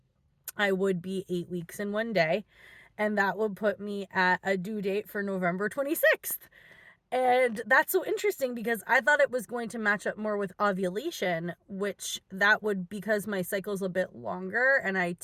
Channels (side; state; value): both; identical; correlation 1.00